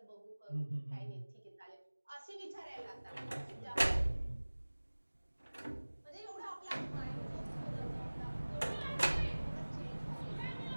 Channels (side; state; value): both; inverted; correlation -1.00